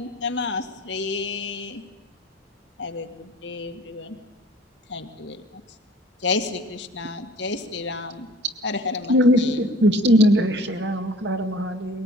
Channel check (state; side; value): normal; both; correlation 0.48